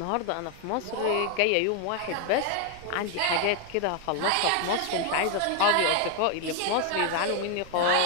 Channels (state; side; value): different; both; correlation 0.00